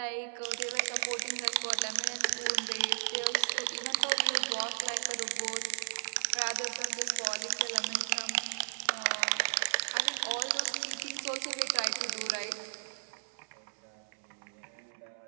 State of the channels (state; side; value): silent; left; 55 dB below the other